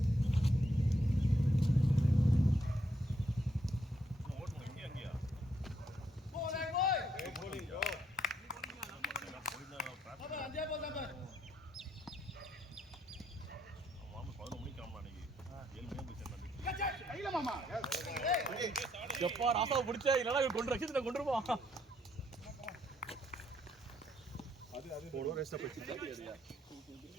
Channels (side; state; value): both; normal; correlation 0.73